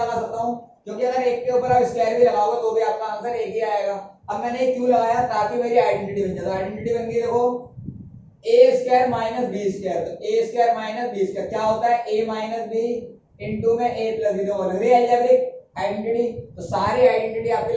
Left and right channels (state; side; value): identical; both; correlation 1.00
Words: सकता हूँ, क्योंकि अगर एक के ऊपर आप स्क्वायर भी लगाओगे तो भी आपका आंसर एक ही आएगा। अब मैंने ये क्यों लगाया, ताकि मेरी आइडेंटिटी बन जाए। तो आइडेंटिटी बन गई, देखो ए स्क्वायर माइनस बी स्क्वायर, तो ए स्क्वायर माइनस बी स्क्वायर क्या होता है, ए माइनस बी इंटू में ए प्लस बी, तो अलजेब्रिक आइडेंटिटी। तो सारी आइडेंटिटी आपकी